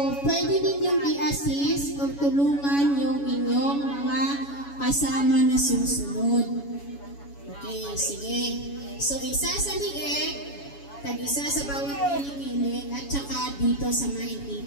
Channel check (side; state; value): right; late; 7.1 ms